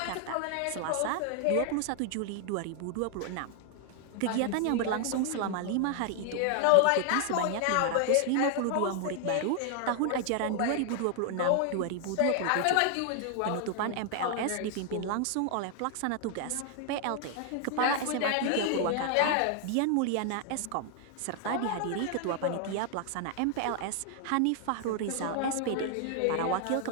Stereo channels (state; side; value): different; both; correlation 0.00